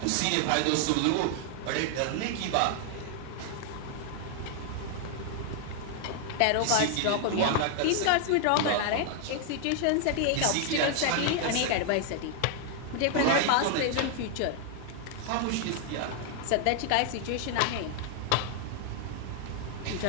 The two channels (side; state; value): both; different; correlation 0.00